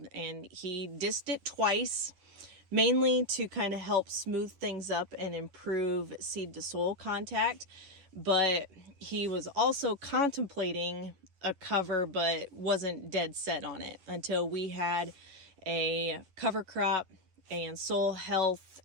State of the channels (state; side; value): late; left; 11 ms